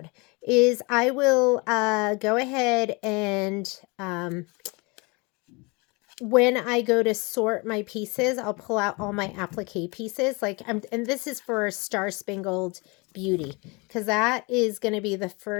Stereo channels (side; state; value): right; quieter; 28.1 dB